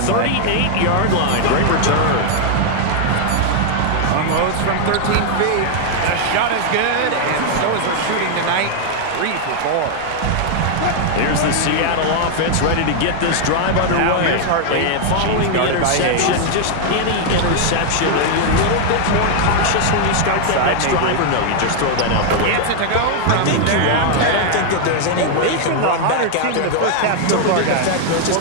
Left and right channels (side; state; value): both; different; correlation 0.00